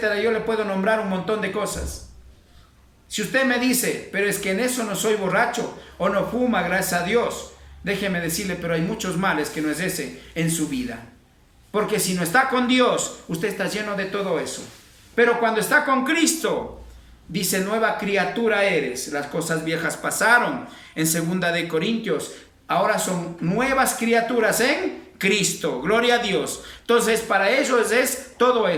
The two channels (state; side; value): identical; both; correlation 1.00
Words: Yo le puedo nombrar un montón de cosas. Si usted me dice, pero es que en eso no soy borracho o no fuma, gracias a Dios, déjeme decirle, pero hay muchos males que no es ese en su vida. Porque si no está con Dios, usted está lleno de todo eso. Pero cuando está con Cristo, dice, nueva criatura eres. Las cosas viejas pasaron. En 2 de Corintios, ahora son nuevas criaturas en Cristo. Gloria a Dios. Entonces, para ellos es todo